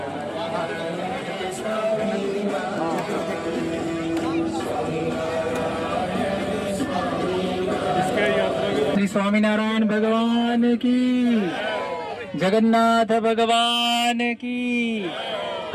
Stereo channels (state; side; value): identical; both; correlation 1.00